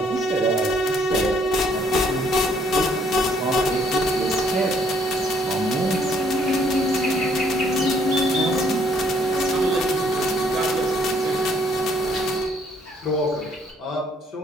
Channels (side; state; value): both; normal; correlation 0.66